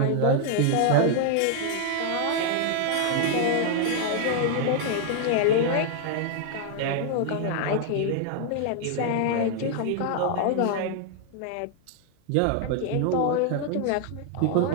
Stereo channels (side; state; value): both; different; correlation 0.00